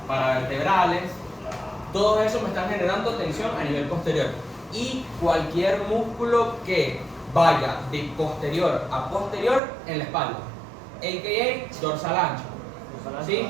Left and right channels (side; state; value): left; drops out; at 9.6 s